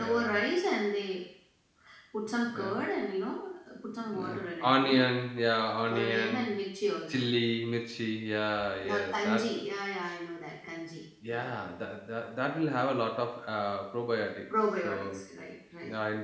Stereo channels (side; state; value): both; identical; correlation 1.00